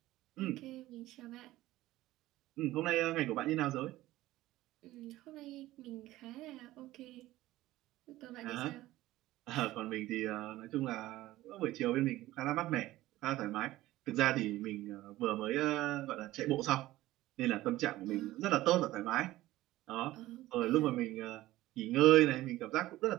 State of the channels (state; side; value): quieter; left; 16.5 dB